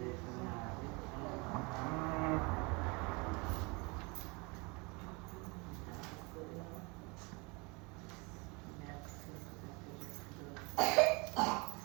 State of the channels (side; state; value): left; quieter; 28.4 dB